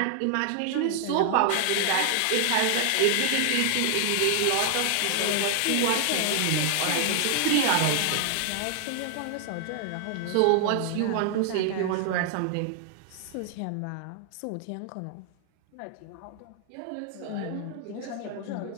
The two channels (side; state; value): both; different; correlation 0.00